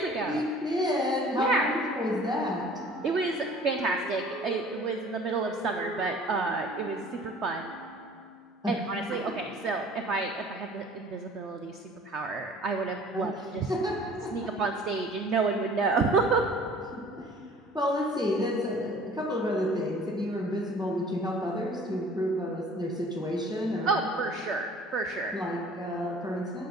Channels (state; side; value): normal; both; correlation 0.49